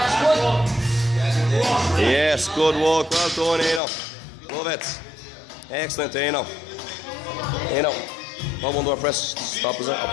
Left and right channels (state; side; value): drops out; right; at 3.8 s